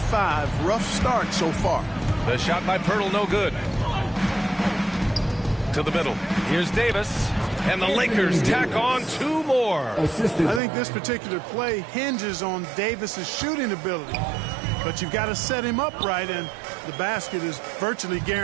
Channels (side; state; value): left; drops out; at 10.6 s